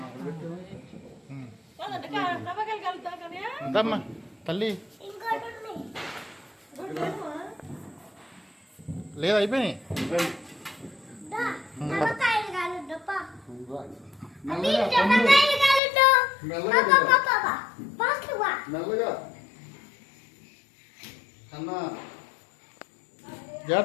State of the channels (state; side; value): drops out; right; at 15.8 s